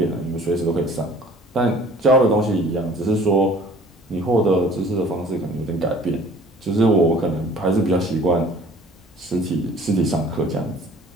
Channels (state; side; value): normal; both; correlation 0.51